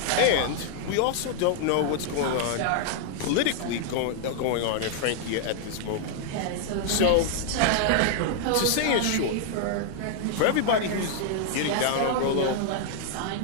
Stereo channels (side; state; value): both; different; correlation 0.00